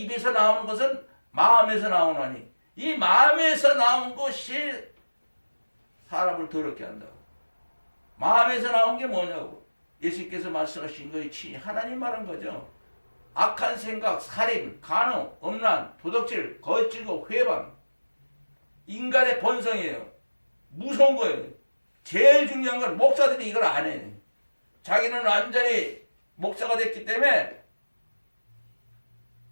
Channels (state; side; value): inverted; both; correlation -1.00